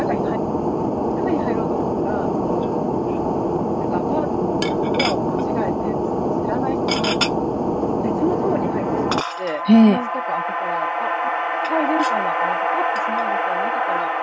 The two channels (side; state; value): both; identical; correlation 1.00